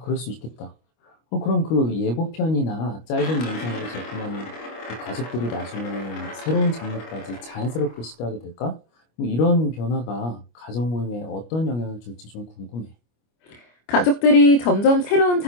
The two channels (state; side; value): late; right; 25 ms